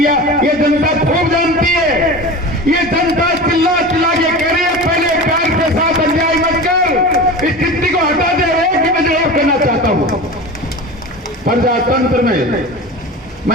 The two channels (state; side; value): normal; both; correlation 0.31